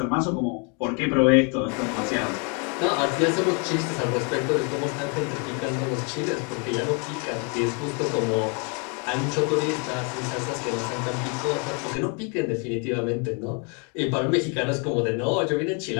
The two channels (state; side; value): quieter; right; 36.1 dB